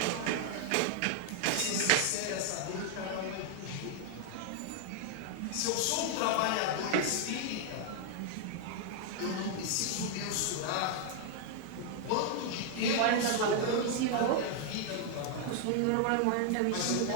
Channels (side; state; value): both; different; correlation 0.00